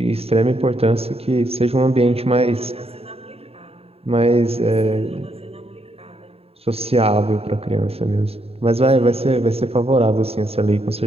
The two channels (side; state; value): left; late; 0.29 ms